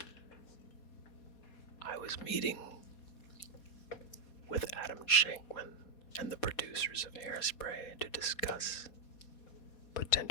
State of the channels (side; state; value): right; late; 4.2 ms